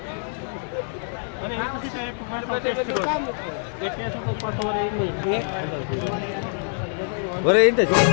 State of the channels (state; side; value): silent; right; 60 dB below the other